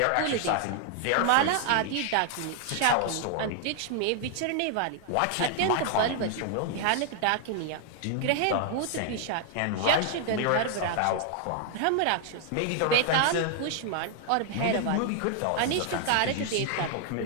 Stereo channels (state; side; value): different; both; correlation 0.00